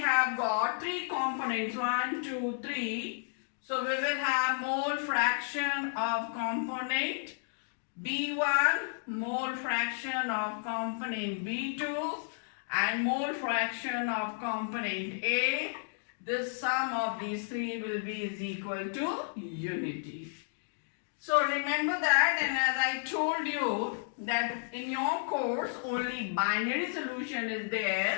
got three components, 1, 2, 3. So we will have mole fraction of component B1, mole fraction of component B2, and mole fraction of component A. This sum of these three will be is equal to unity. So remember that, and as I told you that in your course only binary solution is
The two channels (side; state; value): right; silent; digital silence